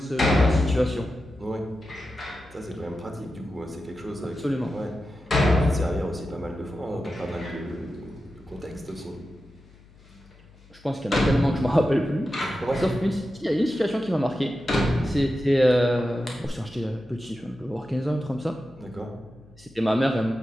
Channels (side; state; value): left; noise; hum, 25 dB below the sound